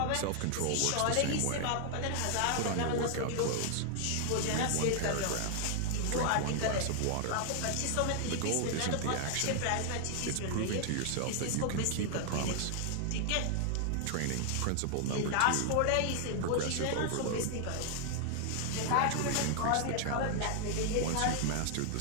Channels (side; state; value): both; different; correlation 0.00